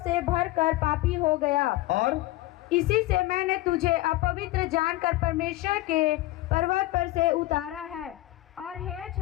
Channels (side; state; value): right; quieter; 17.7 dB